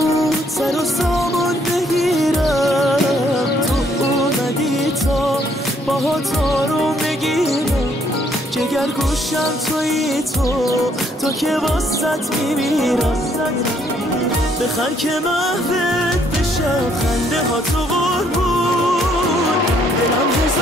سر و سامان بگیرم، تو اومدی تا باهات آروم بگیرم، جگر گوشم تویی تو که واسط میمیرم. بخند که محوت بشم، خنده ها تو قربون، دلم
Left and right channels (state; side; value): normal; both; correlation 0.68